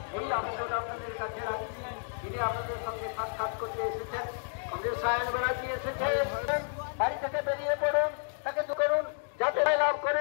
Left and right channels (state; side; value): silent; right; digital silence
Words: তিনি আপনাদের সঙ্গে সাক্ষাৎ করতে এসেছেন। কমরেড সায়ন ব্যানার্জি এসেছেন, বাড়ি থেকে বেরিয়ে পড়ুন, তাকে করুন যাতে লাভ